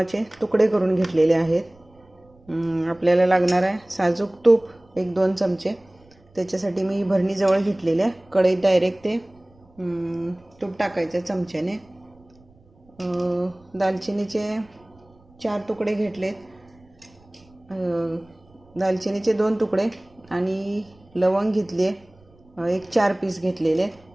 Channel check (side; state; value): right; noise; rumble, 29 dB below the sound